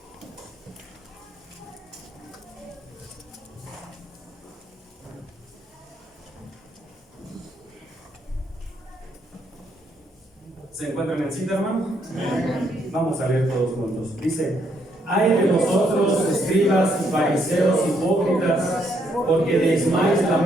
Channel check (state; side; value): normal; both; correlation 0.72